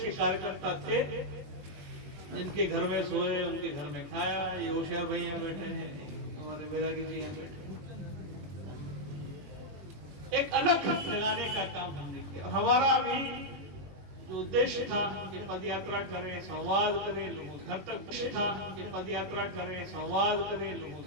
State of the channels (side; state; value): left; late; 21 ms